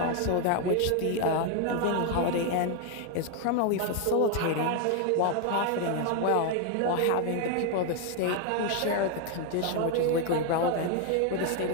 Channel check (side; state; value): both; different; correlation 0.01